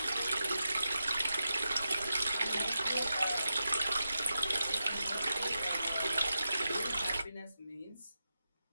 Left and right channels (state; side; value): inverted; both; correlation -0.90